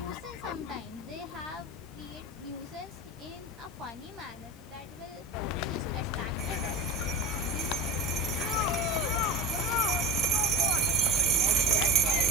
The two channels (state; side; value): normal; both; correlation 0.31